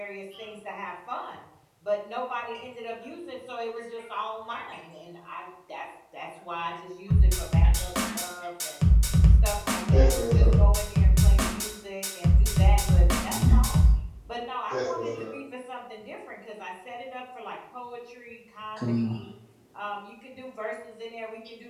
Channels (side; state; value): both; identical; correlation 1.00